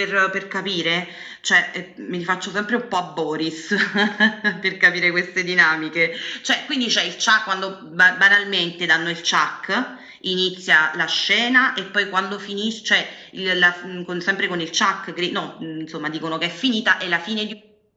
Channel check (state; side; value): identical; both; correlation 1.00